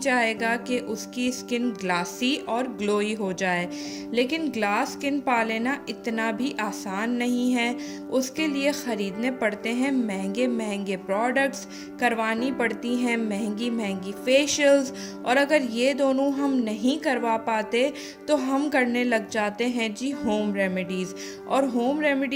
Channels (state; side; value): identical; both; correlation 1.00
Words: कि उसकी स्किन ग्लासी और ग्लोई हो जाए। लेकिन ग्लास स्किन पा लेना इतना भी आसान नहीं है। उसके लिए ख़रीदने पड़ते हैं महंगे महंगे प्रोडक्ट्स, करवानी पड़ती हैं महंगी महंगी फेशियल्स, और अगर ये दोनों हम नहीं करवा पाते तो हम करने लग जाते हैं जी होम रेमेडीज़। और होम